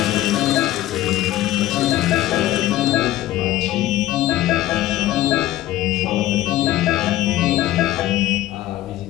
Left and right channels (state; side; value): quieter; right; 14.8 dB